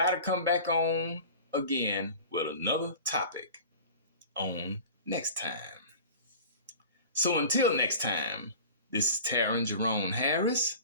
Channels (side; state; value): both; inverted; correlation -0.38